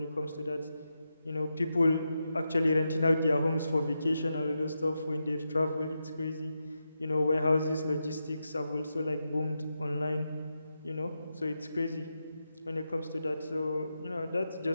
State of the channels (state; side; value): inverted; both; correlation -0.87